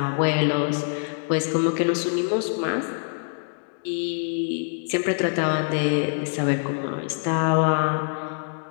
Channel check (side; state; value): right; silent; digital silence